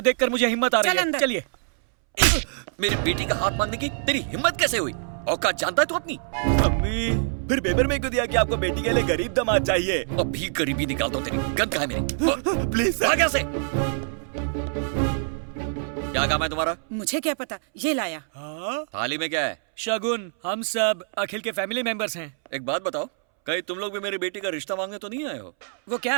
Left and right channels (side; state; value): left; silent; 62 dB below the other